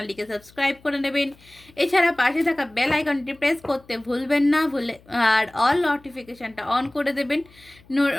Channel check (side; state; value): left; noise; hum, 27 dB below the sound